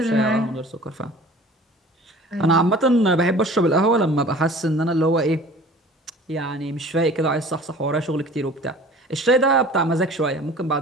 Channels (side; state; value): both; normal; correlation 0.45